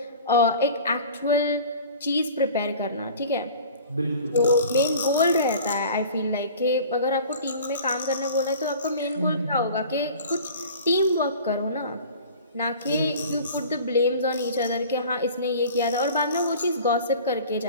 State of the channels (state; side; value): inverted; both; correlation -0.43